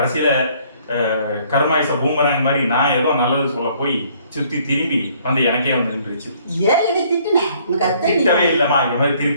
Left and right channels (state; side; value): inverted; both; correlation -0.61